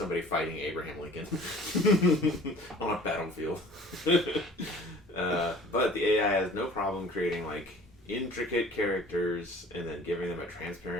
fighting Abraham Lincoln on a battlefield. But the AI has no problem creating like intricate characters and then giving them a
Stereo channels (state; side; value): normal; both; correlation 0.47